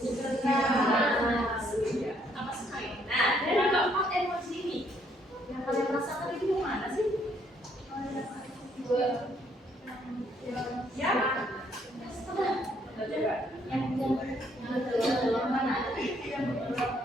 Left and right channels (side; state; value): both; normal; correlation 0.68